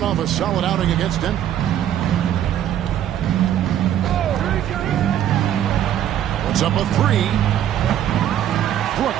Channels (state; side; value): quieter; left; 10.9 dB